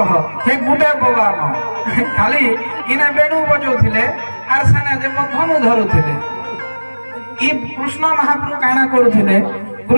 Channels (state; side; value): inverted; both; correlation -1.00